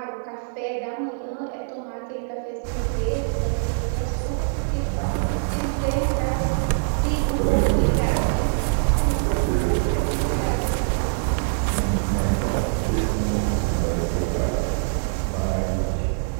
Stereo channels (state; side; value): silent; left; digital silence